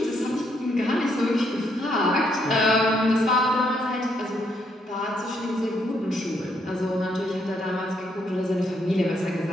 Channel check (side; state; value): both; normal; correlation 0.74